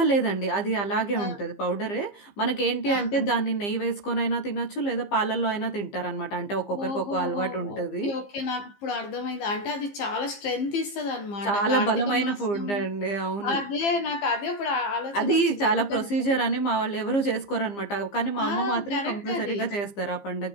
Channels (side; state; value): right; late; 15 ms